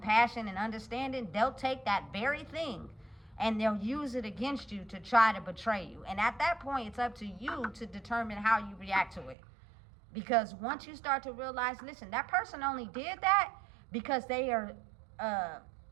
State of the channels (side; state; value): left; drops out; at 9.3 s